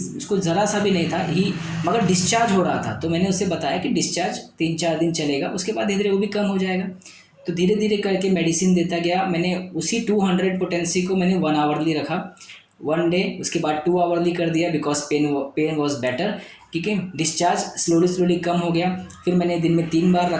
उसको ज़रा सा भी नहीं था ही, मगर डिस्चार्ज हो रहा था। तो मैंने उससे बताया कि डिस्चार्ज 3-4 दिन चलेगा, उसके बाद धीरे धीरे वो भी कम हो जाएगा। तो धीरे धीरे करके मेडिसिन देता गया। मैंने उसी 200 पोटेंसी को मैंने 1 आवरली रखा 1 डे, उसके बाद 2 आवरली कर दिया, बिकॉज पेन वॉज बेटर, ठीक है। डिस्चार्ज स्लोली कम हो गया। फिर मैंने दिन में 3 बार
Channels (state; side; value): identical; both; correlation 1.00